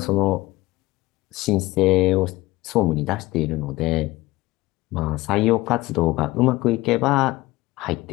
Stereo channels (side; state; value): right; quieter; 19.2 dB